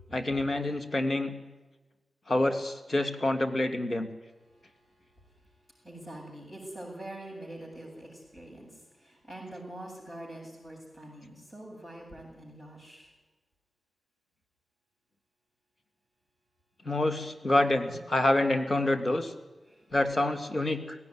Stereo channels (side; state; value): both; normal; correlation 0.93